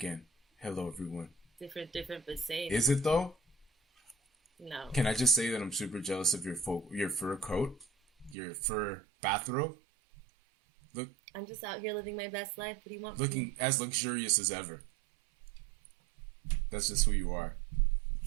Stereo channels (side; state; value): left; drops out; at 8.3 s